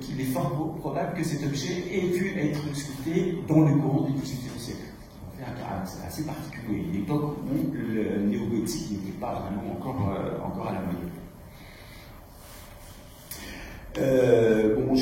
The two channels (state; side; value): identical; both; correlation 1.00